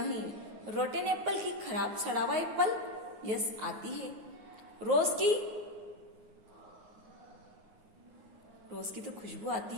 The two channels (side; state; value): left; late; 9.4 ms